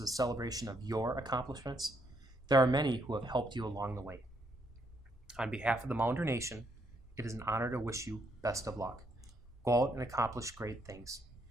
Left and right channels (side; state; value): both; normal; correlation 0.74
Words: a celebration of your accomplishments, there are many who have helped you along the way. On behalf of the Mounder Nation, it is an honor to wish you best of luck. Go out and accomplish great things.